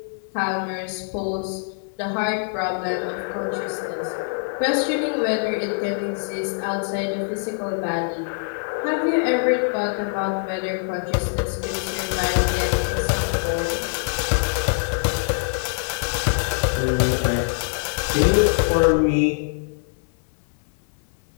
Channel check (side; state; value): right; silent; 63 dB below the other